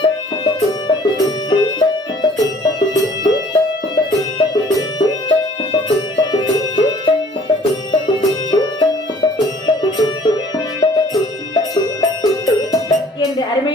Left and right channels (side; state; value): both; normal; correlation 0.54